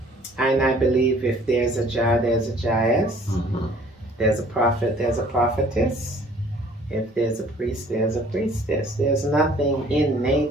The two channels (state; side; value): normal; both; correlation 0.55